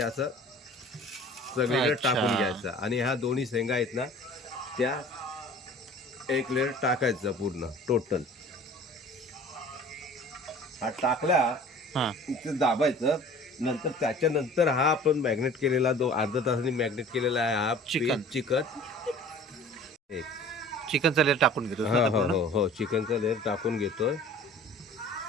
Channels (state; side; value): normal; both; correlation 0.46